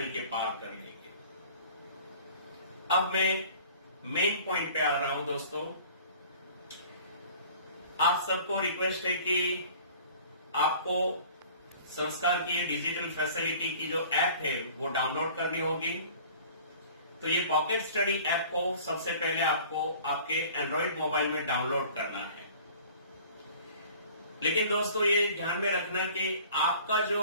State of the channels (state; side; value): inverted; both; correlation -0.48